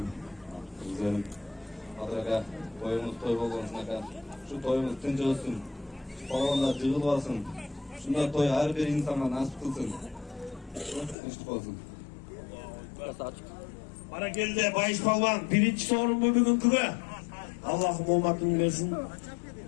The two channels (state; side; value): drops out; right; at 11.2 s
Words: Güzelim. Kadraga toyumuz toy bolğonsuna şu toyumuz tinç olsun. Palvanlar jığılbasın. Şunda toy her bir insana nasip kılsın. Tinçlik olsun. Barakelde Bayiş Palvan birinci sorun bu bugünkü. Allah'ım omatını versin.